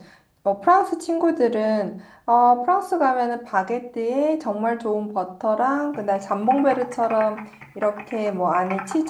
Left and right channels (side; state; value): both; identical; correlation 1.00